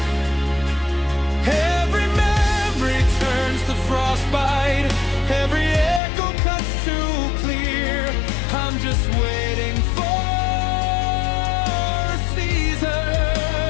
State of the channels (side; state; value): right; drops out; at 6.0 s